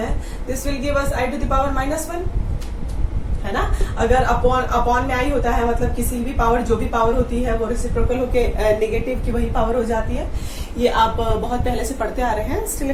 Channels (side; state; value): both; identical; correlation 1.00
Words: this will give us i to the power -1, है ना। अगर अपॉन में आई होता है मतलब किसी भी पावर, जो भी पावर होती है वो रेसिप्रोकल होके नेगेटिव की वही पावर हो जाती है। ये आप बहुत पहले से पढ़ते आ रहे हैं। Still